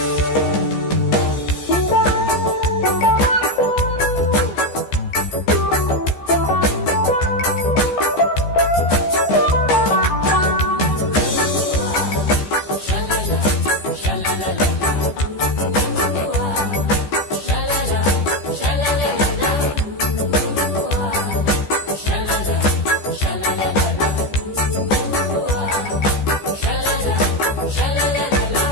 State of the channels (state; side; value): late; right; 14 ms